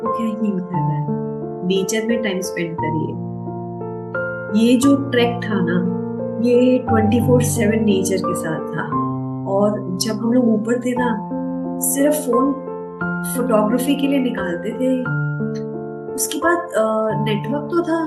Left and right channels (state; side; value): identical; both; correlation 1.00